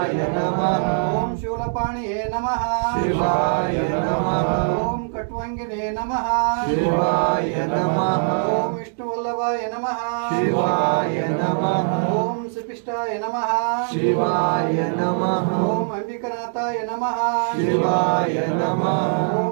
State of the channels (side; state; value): left; silent; digital silence